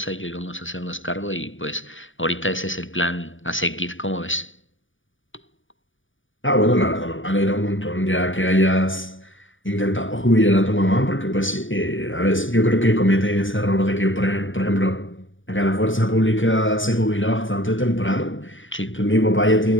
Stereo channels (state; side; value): late; right; 0.57 ms